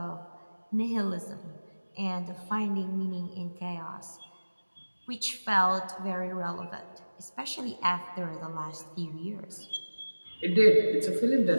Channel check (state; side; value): inverted; both; correlation -1.00